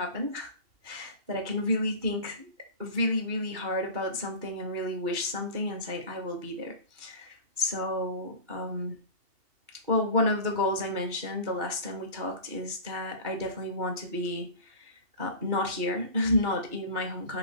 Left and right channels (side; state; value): left; late; 2.7 ms